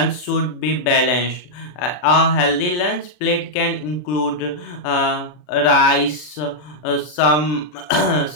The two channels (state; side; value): late; right; 40 ms